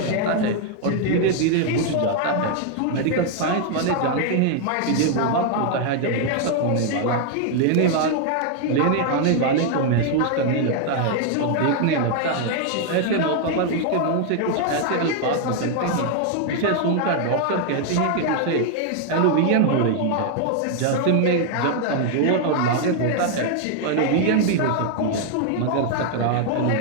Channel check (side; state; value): both; different; correlation 0.00